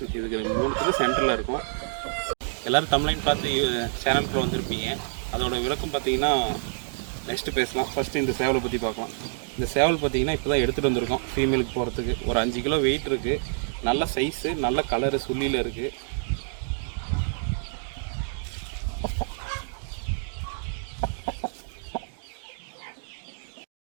இதுக்கு 3 சென்டரில் இருக்கும். எல்லோரும் தமிழையும் பார்த்து சேனலுக்குள்ள வந்திருப்பீங்க. அதோட விளக்கம் பார்த்தீங்கன்னா நெக்ஸ்ட்டு பேசலாம். ஃபஸ்ட்டு இந்த சேவலை பற்றி பார்க்கலாம். இந்த சேவல் பார்த்தீங்கன்னா இப்போ தான் எடுத்துகிட்டு வந்திருக்கோம். ஃபீமேலுக்கு போகிறதுக்கு ஒரு 5 கிலோ வெயிட் இருக்குது. நல்ல சைஸு, நல்ல கலரு, சுள்ளியில் இருக்குது.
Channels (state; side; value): silent; left; digital silence